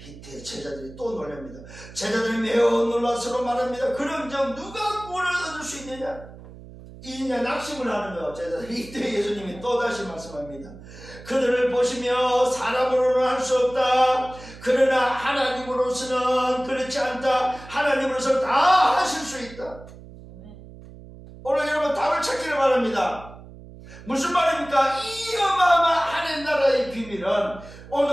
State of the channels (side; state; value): right; noise; hum, 17 dB below the sound